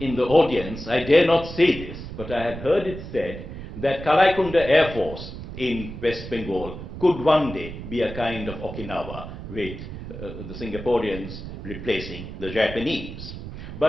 the audience, I dare not say this, but I have heard it said that Kalaikunda Air Force in West Bengal could one day be a kind of Okinawa, with the Singaporeans replacing the Japanese.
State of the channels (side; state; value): right; noise; rumble, 10 dB below the sound